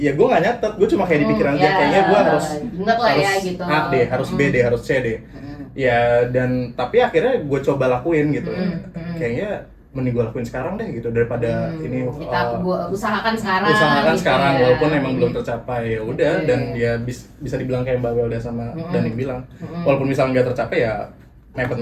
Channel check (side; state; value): both; identical; correlation 1.00